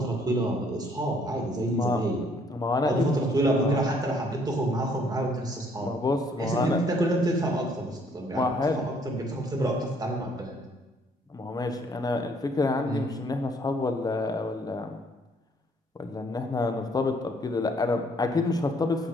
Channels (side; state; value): both; normal; correlation 0.64